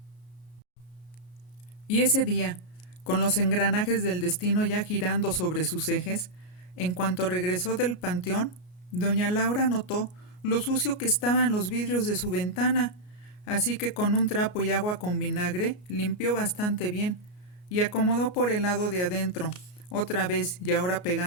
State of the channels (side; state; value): right; late; 33 ms